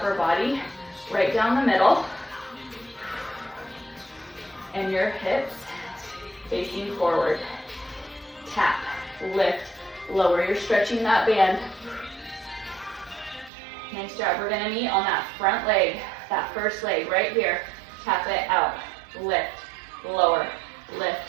body right down the middle and your hips facing forward. Tap, lift, lower. You're stretching that band. Nice job. We're gonna meet on that front leg, that first leg right here. Tap it out, lift, lower,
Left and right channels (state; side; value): drops out; left; at 13.5 s